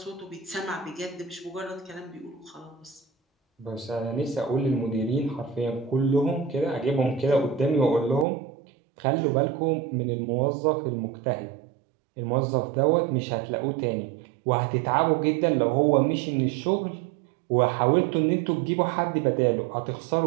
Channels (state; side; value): drops out; left; at 8.2 s